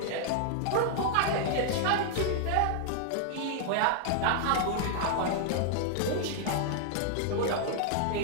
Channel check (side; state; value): both; different; correlation -0.01